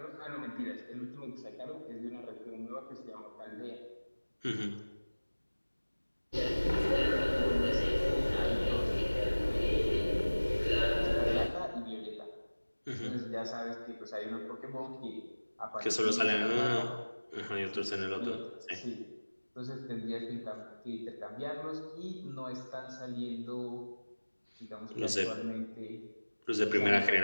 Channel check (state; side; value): inverted; both; correlation -1.00